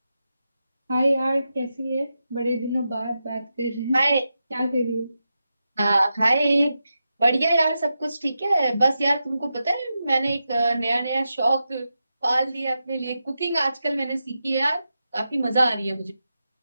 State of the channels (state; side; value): inverted; both; correlation -0.89